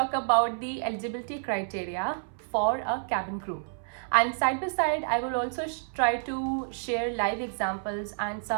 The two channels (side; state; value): left; silent; 58 dB below the other